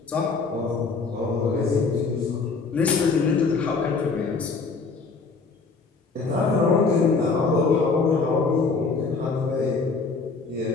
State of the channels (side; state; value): right; quieter; 4.4 dB